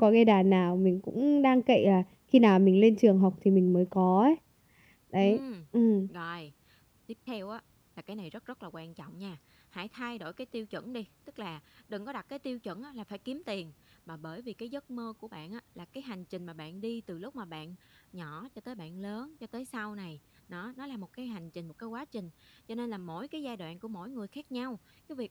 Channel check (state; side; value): identical; both; correlation 1.00